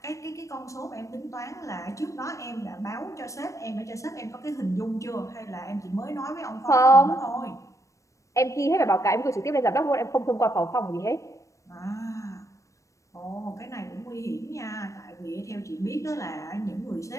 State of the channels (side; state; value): right; late; 0.15 ms